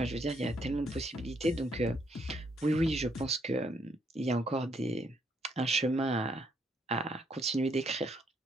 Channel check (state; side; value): normal; both; correlation 0.72